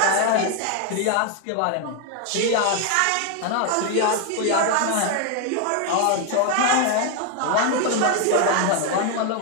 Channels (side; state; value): both; different; correlation 0.00